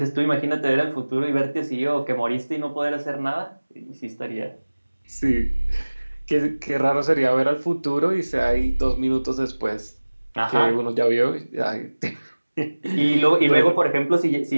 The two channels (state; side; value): inverted; both; correlation -1.00